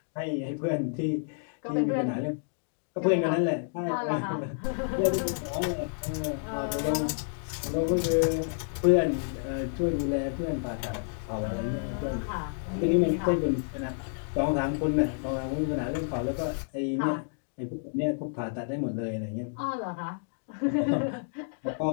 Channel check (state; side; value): silent; right; digital silence